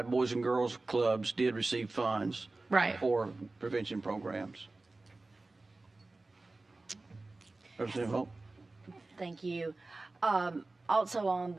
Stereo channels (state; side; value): quieter; left; 3.2 dB